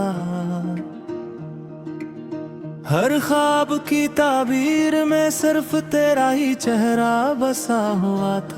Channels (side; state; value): both; identical; correlation 1.00